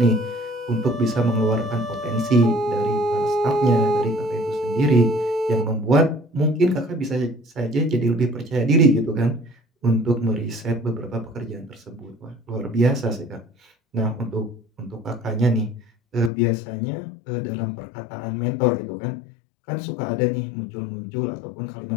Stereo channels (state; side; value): drops out; right; at 16.3 s